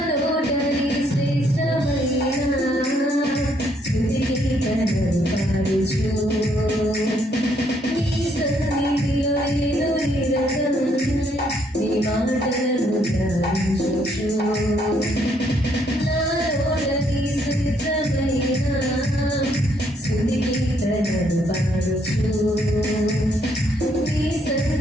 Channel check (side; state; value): both; normal; correlation 0.70